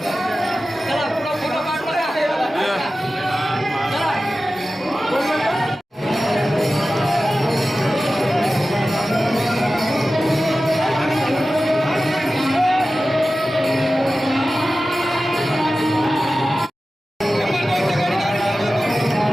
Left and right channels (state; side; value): normal; both; correlation 0.95